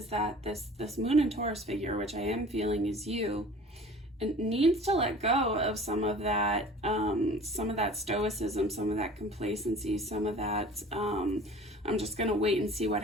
that this Moon and Taurus figure, which I am feeling is you, it needs to let go of some of that stoicism, some of that complacency, some of that I'm just gonna wait and see what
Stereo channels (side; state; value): both; normal; correlation 0.45